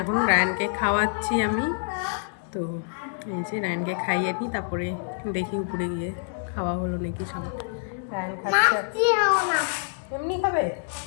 এখন। রায়ানকে খাওয়াচ্ছি আমি, তো এই যে রায়ানকে খাইয়ে নিই, তারপরে দেখি উপরে গিয়ে খাওয়া হলো নাকি সবার। রায়ান খাচ্ছে এমনি খাবে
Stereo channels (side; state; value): right; silent; digital silence